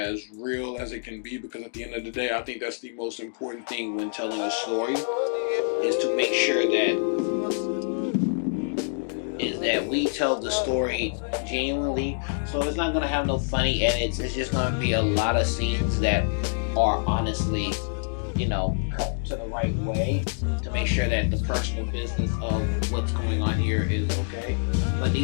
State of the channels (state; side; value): silent; right; digital silence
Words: real as it can be, because at the end of the day, I think that's the most important thing when telling a story, is to make sure that we tell the story genuinely. So it's not going to have no funny edits. It's just going to be a lot of scenes that are honestly cut to the right way to make sure that the personal business of what's going on here is okay. But